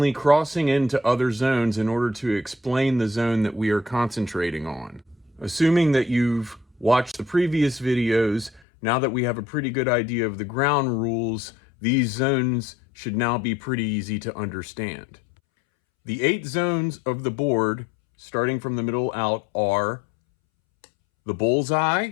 crossing into other zones in order to explain the zone that we are concentrating on. Assuming that you've watched the previous videos, now that we have a pretty good idea of the ground rules, these zones should now be pretty easy to understand. The 8 zones of the board, starting from the middle out, are the bullseye,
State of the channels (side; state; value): right; drops out; at 8.6 s